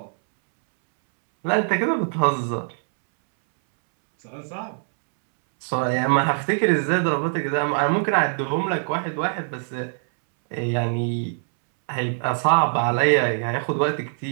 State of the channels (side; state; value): left; silent; 63 dB below the other